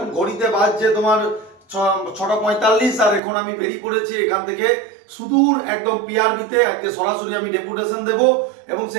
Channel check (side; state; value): left; drops out; at 3.2 s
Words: ঘড়িতে বাজছে তোমার 6:45, আর এখন আমি বেরিয়ে পড়েছি এখান থেকে সুদূর একদম পিআরবিতে। আজকে সরাসরি আমি ডেপুটেশন দেব এবং